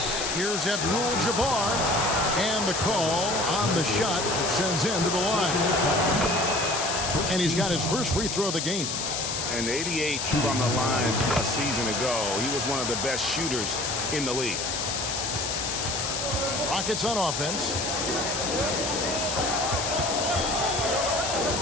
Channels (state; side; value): noise; left; hiss, 2 dB below the sound